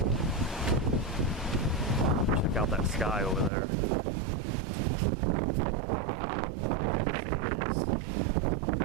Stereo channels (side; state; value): left; drops out; at 3.5 s